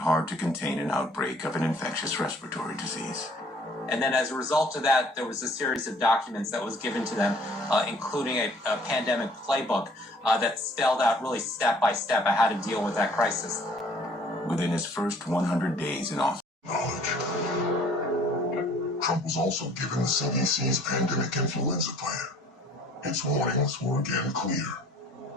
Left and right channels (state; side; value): normal; both; correlation 0.56